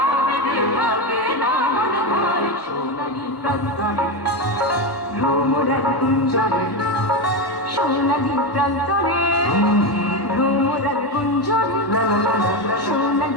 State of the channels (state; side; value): late; right; 1.1 ms